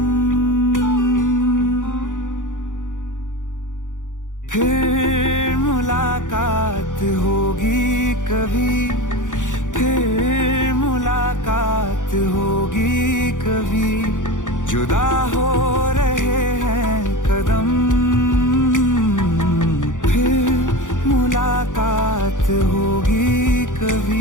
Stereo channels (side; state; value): right; late; 0.87 ms